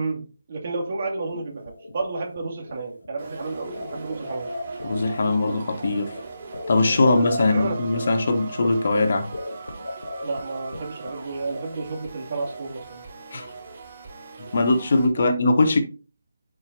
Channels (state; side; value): inverted; both; correlation -0.86